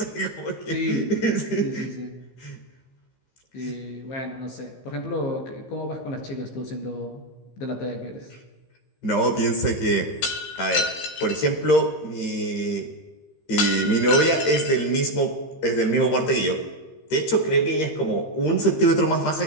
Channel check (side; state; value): right; late; 15 ms